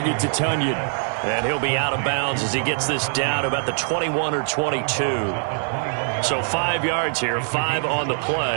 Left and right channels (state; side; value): silent; left; digital silence